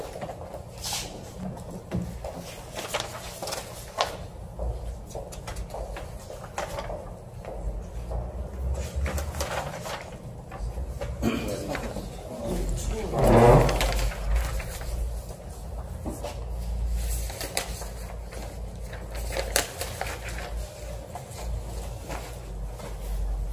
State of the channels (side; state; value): both; identical; correlation 1.00